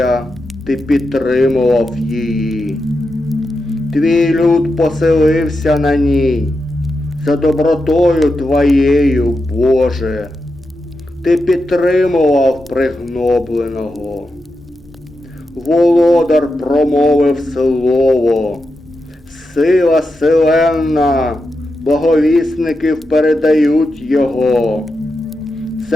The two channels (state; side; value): normal; both; correlation 0.88